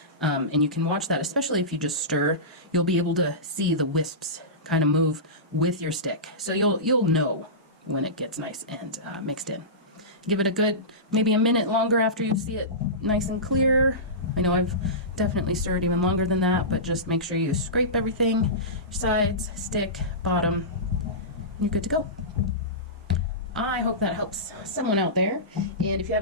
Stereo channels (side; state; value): both; normal; correlation -0.20